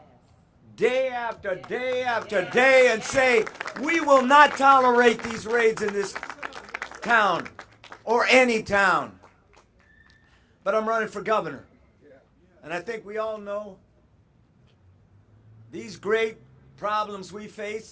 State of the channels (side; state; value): both; identical; correlation 1.00